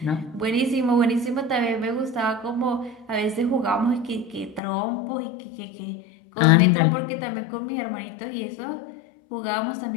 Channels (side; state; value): right; drops out; at 4.6 s